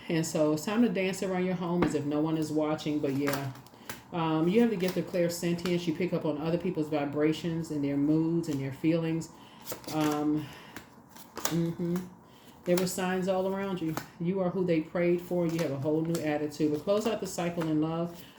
And so it's time to dance around your home as if no one is watching. But yeah, you have the gift of clairsentience. You pick up on other people's vibrations and their moods and their feelings. There were signs all around you. You are who they prayed for. You have a whole new attitude. But close out the cycle in love.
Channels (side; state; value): both; identical; correlation 1.00